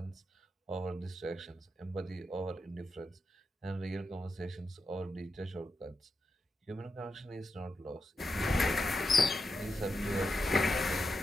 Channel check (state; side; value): normal; both; correlation 0.87